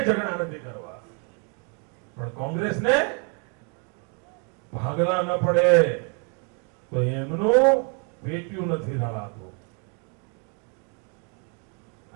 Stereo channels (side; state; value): left; quieter; 37.8 dB